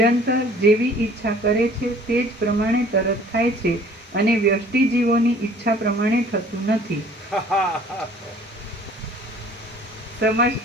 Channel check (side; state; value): both; normal; correlation 0.52